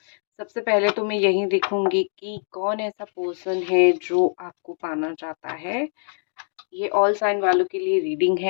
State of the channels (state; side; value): silent; right; digital silence